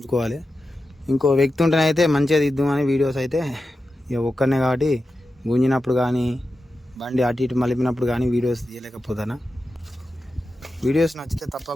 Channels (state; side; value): normal; both; correlation 0.91